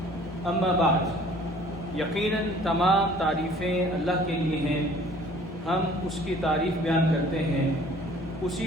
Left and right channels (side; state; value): both; normal; correlation 0.53